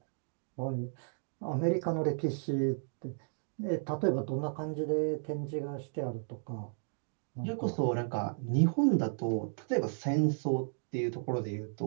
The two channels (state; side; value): silent; left; digital silence